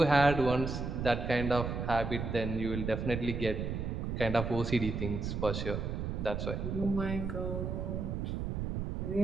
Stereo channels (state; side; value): noise; right; rumble, 3 dB below the sound